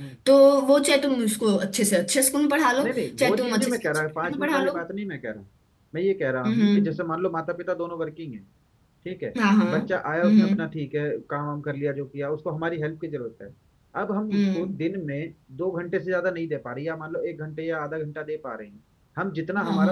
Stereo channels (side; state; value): both; identical; correlation 1.00